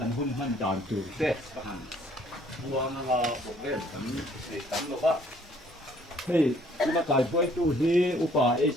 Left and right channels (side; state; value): both; normal; correlation 0.61